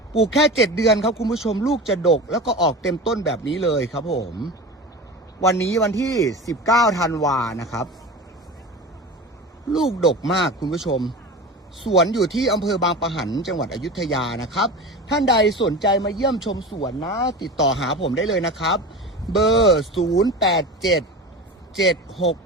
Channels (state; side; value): normal; both; correlation 0.30